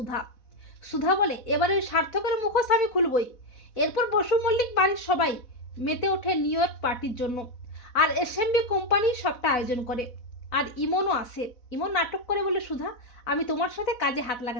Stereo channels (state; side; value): late; right; 4.0 ms